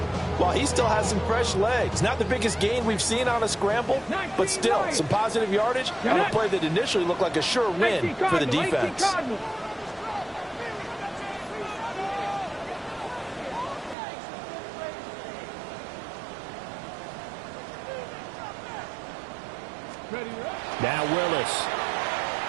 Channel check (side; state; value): left; drops out; at 14.0 s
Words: while he still has some fresh legs. Not the biggest gain we've seen on a scramble, but still some positive yardage on a play that initially looked like a sure win for the defense. Now Willis.